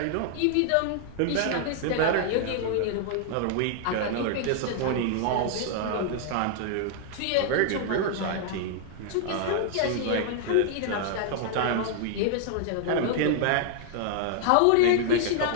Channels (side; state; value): both; different; correlation -0.01